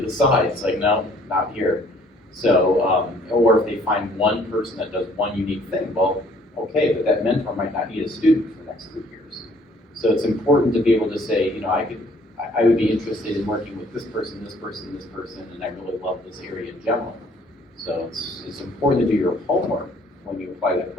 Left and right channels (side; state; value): both; normal; correlation 0.59